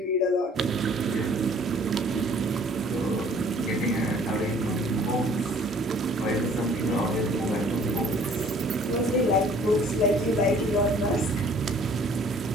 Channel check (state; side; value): normal; both; correlation 0.55